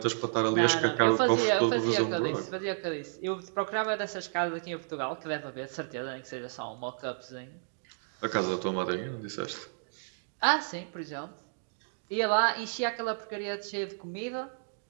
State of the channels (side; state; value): left; silent; digital silence